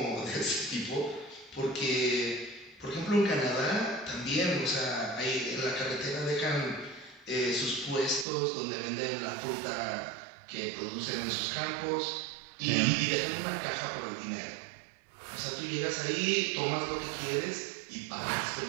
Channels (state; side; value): drops out; left; at 8.2 s